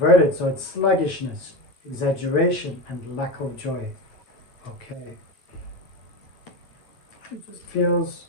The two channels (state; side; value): late; right; 9.2 ms